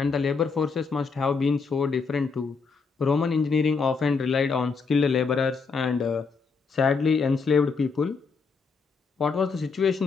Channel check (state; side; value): quieter; right; 4.9 dB